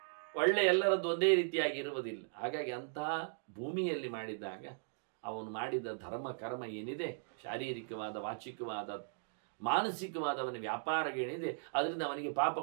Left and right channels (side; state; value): left; silent; digital silence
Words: ಒಳ್ಳೆ ಎಲ್ಲರದ್ದು ಒಂದೇ ರೀತಿಯಾಗಿ ಇರುವುದಿಲ್ಲ. ಹಾಗಾಗಿ ಅಂತಹ ಭೂಮಿಯಲ್ಲಿ ಮಾಡಿದಾಗ ಅವನು ಮಾಡಿದ ಧರ್ಮ ಕರ್ಮ ಏನಿದೆ, ಶಾರೀರಿಕವಾದ, ವಾಚಿಕವಾದ, ಮಾನಸಿಕವಾದ ಅವನ ವ್ಯಾಪಾರಗಳೇನಿದೆ, ಅದರಿಂದ ಅವನಿಗೆ